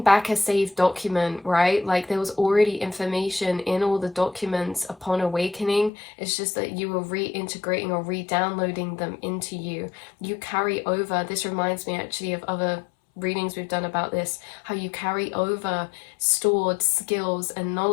a saved document, right? Like, there was already information in all the documents upon awakening. It's just that you were reintegrating or re-downloading them into you. You carry over, this reminds me actually of other readings we've done about this, how you carry over stored skills and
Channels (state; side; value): drops out; right; at 5.9 s